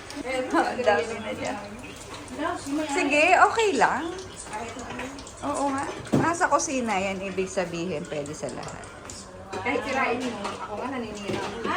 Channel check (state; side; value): identical; both; correlation 1.00